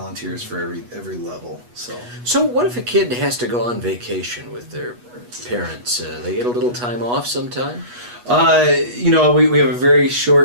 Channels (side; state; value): left; late; 8.2 ms